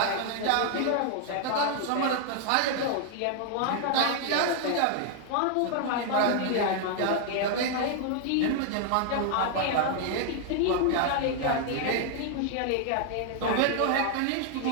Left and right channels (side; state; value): both; different; correlation 0.00